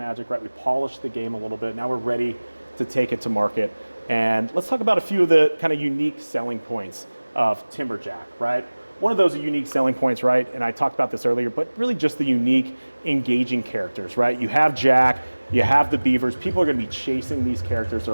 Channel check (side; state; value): both; inverted; correlation -1.00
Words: right? We polished the game a little bit. Now we're ready to take it to market. And let's talk about a few of the kind of unique selling points of Timberjack, right? One of those unique selling points, right? And I talked about this earlier, but really just the unique, engaging characters, right? You have Jack, you have the Beavers. People are gonna be chasing these characters.